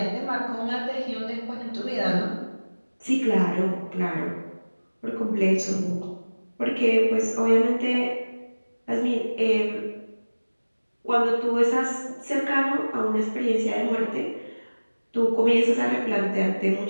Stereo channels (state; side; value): inverted; both; correlation -1.00